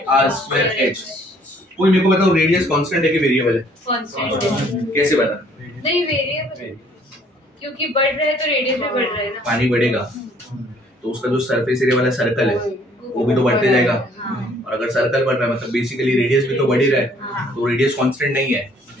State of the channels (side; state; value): both; normal; correlation 0.60